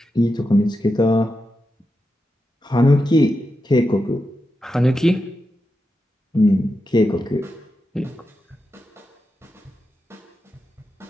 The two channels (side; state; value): both; normal; correlation 0.88